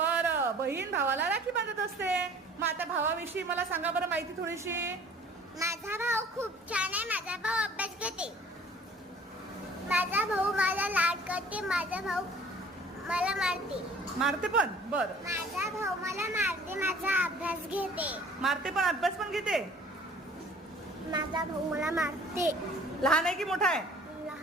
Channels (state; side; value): normal; both; correlation 0.51